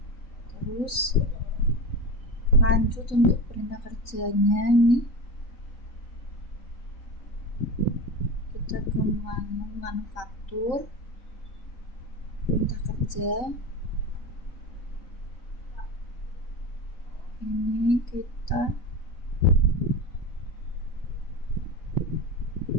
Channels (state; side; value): late; right; 3.9 ms